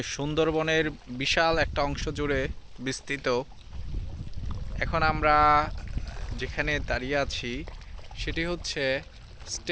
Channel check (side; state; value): both; identical; correlation 1.00